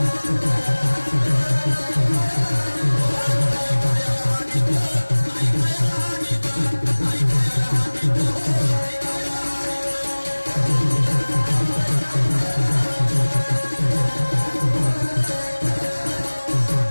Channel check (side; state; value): both; inverted; correlation -1.00